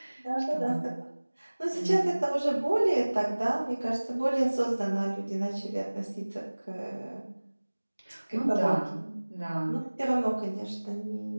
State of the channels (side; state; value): both; inverted; correlation -1.00